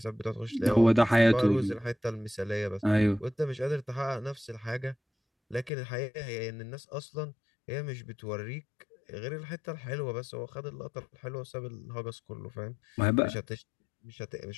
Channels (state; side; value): drops out; right; at 5.7 s